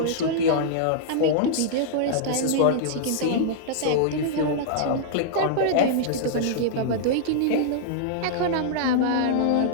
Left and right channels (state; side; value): different; both; correlation -0.02